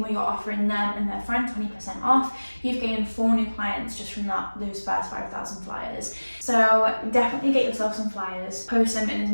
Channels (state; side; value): inverted; both; correlation -1.00